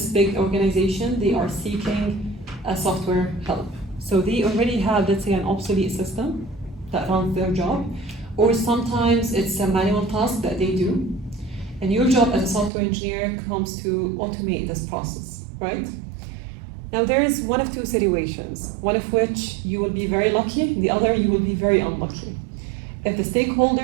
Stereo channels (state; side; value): drops out; left; at 12.7 s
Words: big organization, they are seeking a software help. So they already have, let's say, an obsolete system that runs their job, or sometimes it's a manual task that they do. And your job as a software engineer comes to automate this process, right? Now there is one of 2 situations, one of which you will be very lucky, the other you will be very unlucky. If the